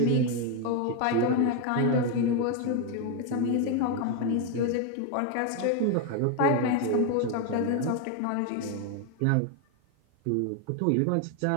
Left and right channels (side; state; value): both; different; correlation 0.01